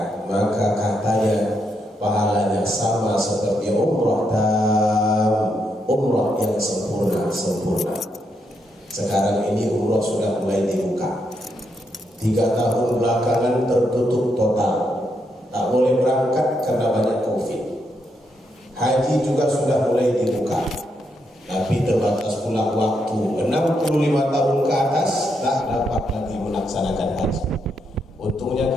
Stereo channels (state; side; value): normal; both; correlation 0.79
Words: maka katanya pahalanya sama seperti umrah umrah yang sempurna. Sekarang ini umrah sudah mulai dibuka. 3 tahun belakangan tertutup total, tak boleh berangkat karena banyak COVID. Haji juga sudah mulai dibuka, tapi terbatas pula waktu. 65 tahun ke atas tak dapat lagi melaksanakan haji.